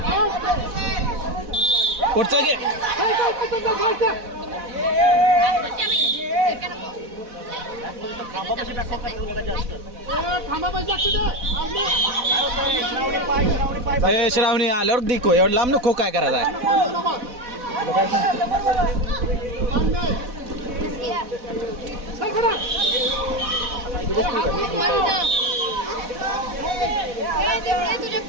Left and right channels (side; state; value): left; late; 4.1 ms